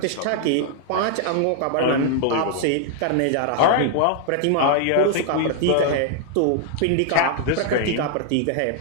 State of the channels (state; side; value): different; both; correlation 0.00